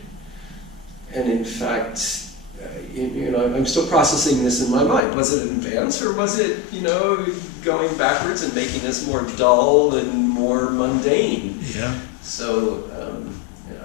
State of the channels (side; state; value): right; drops out; at 5.0 s